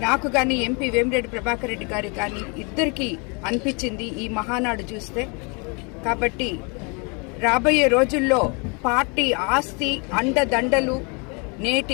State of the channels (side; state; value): right; quieter; 33.0 dB